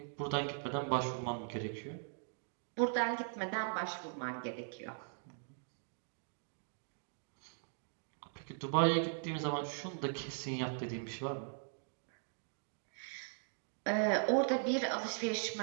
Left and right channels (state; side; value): silent; left; digital silence